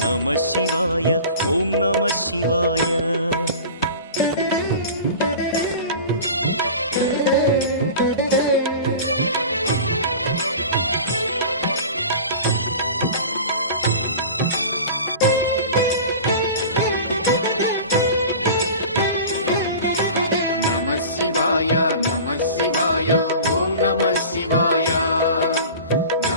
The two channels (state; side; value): inverted; both; correlation -0.37